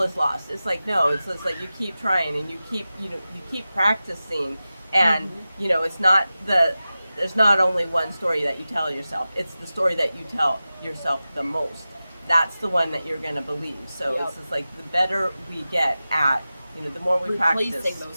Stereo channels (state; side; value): inverted; both; correlation -0.95